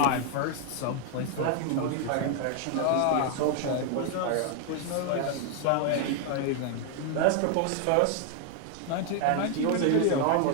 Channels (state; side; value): different; both; correlation 0.00